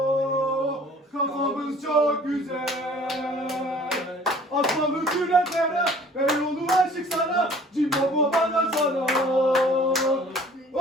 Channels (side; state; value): both; normal; correlation 0.52